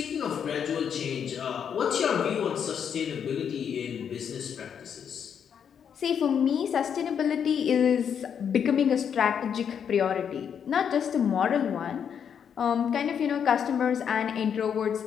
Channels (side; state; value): right; quieter; 7.8 dB